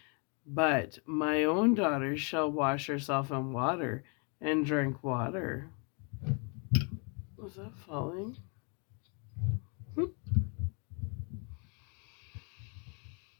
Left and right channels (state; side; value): quieter; right; 36.8 dB